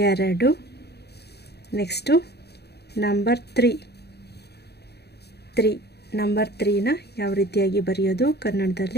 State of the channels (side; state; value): right; late; 0.48 ms